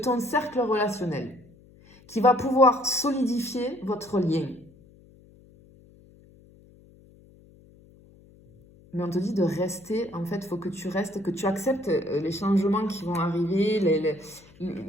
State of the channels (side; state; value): left; noise; hum, 26 dB below the sound